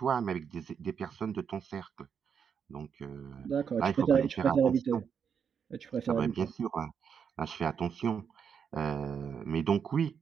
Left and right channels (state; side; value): quieter; left; 7.1 dB